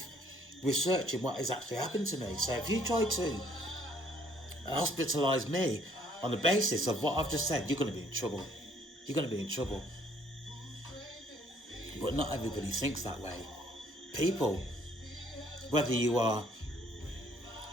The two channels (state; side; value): normal; both; correlation 0.62